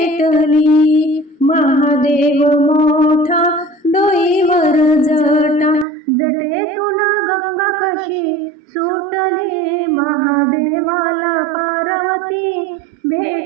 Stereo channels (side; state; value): left; drops out; at 5.9 s